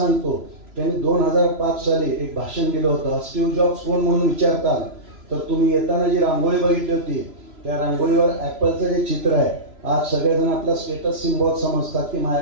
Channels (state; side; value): late; left; 3.0 ms